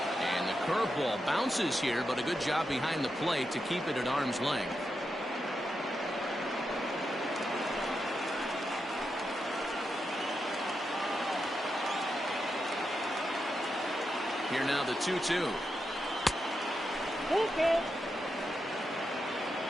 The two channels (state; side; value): normal; both; correlation 0.86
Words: And the curveball bounces here, but a good job behind the plate to keep it at arm's length. Here now the 2-2. Okay.